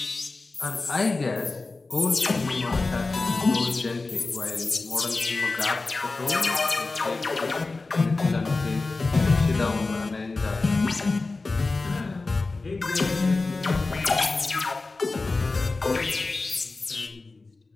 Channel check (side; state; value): right; quieter; 3.6 dB